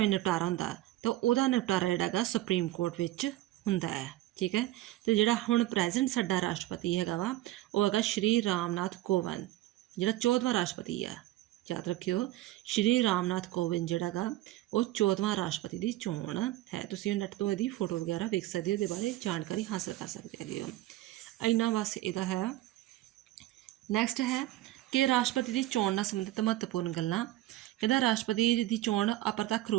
ਨਿਪਟਾਰਾ ਹੁੰਦਾ? ਤਾਂ ਉਹਦਾ ਨਿਪਟਾਰਾ ਜਿਹੜਾ ਹੈਗਾ ਸੁਪਰੀਮ ਕੋਰਟ ਵਿੱਚ ਹੁੰਦਾ ਹੈ। ਠੀਕ ਹੈ। ਅਤੇ ਜਿਹੜਾ ਹੁਣ ਪ੍ਰੈਜ਼ੈਂਟ ਸਾਡਾ ਰਾਸ਼ਟਰਪਤੀ ਹੈਗਾ ਵਾ, ਉਹ ਹੈਗਾ ਸ਼੍ਰੀ ਰਾਮਨਾਥ ਕੋਵਿੰਦ, ਜਿਹੜਾ 14ਵਾਂ ਰਾਸ਼ਟਰਪਤੀ ਹੈ। ਯਾਦ ਰੱਖਿਓ, ਸ਼੍ਰੀ ਰਾਮਨਾਥ ਕੋਵਿੰਦ ਜਿਹੜਾ ਹੈਗਾ ਉਹ 14ਵਾਂ ਰਾਸ਼ਟਰਪਤੀ ਦੀ ਚੋਣ ਹੈ। ਤੁਸੀਂ ਨੈੱਟ ਤੋਂ ਇਹਦੀ ਫੋਟੋ ਵਗੈਰਾ ਵੇਖ ਸਕਦੇ ਹੋ, ਇਹਦੇ ਬਾਰੇ ਜਾਣਕਾਰੀ ਹਾਸਲ ਕਰ ਸਕਦੇ ਹੈਗੇ ਹੋ। ਇੰਨਾ ਬਸ ਇਹਦਾ ਹੈ। ਨੈਕਸਟ ਹੈ ਕਿ ਰਾਸ਼ਟਰਪਤੀ ਦੀ ਚੋਣ ਨਾਲ ਸੰਬੰਧਿਤ ਮਹੱਤਵਪੂਰਨ ਗੱਲਾਂ। ਕਹਿੰਦਾ ਰਾਸ਼ਟਰਪਤੀ ਦੀ ਚੋਣ ਅਪਰਤੱਖ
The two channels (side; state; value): left; quieter; 15.9 dB